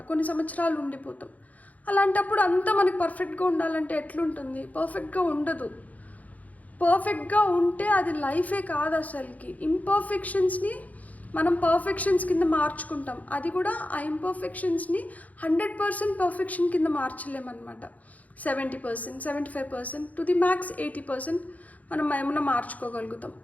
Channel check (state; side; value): late; right; 0.075 ms